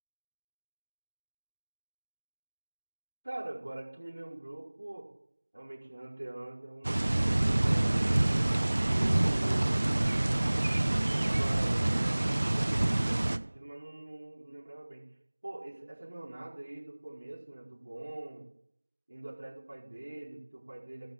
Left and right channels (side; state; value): both; inverted; correlation -1.00